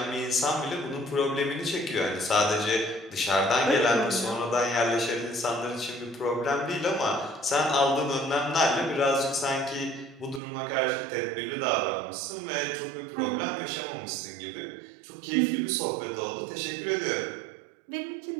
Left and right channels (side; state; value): left; drops out; at 10.4 s